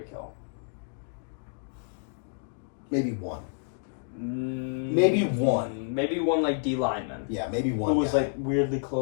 Hill. Maybe one. Maybe one like D lineman. Yeah, maybe one. Who was like weirdly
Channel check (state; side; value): silent; right; digital silence